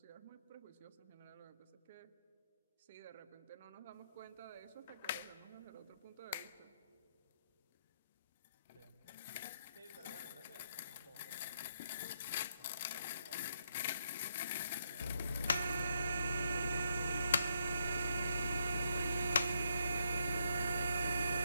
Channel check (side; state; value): both; inverted; correlation -0.77